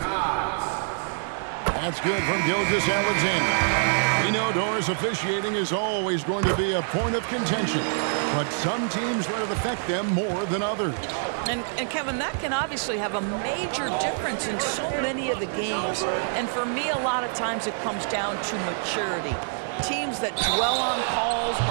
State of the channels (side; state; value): left; silent; 61 dB below the other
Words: That's good from Gilgeous-Alexander. We know Doris officiating is always going to be a point of contention, but some teams let it affect them more than others. And Kevin, that can obviously have a major difference in so many of the games. And for me, a lot of times it comes down to maturity. Teams that dwell on calls